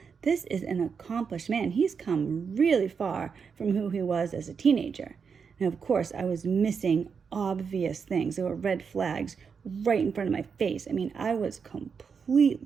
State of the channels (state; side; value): quieter; left; 6.0 dB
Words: This is an accomplished man. He's come really far from who he was as a teenager. And of course, I was missing obvious things. There were red flags right in front of my face. I mean, I was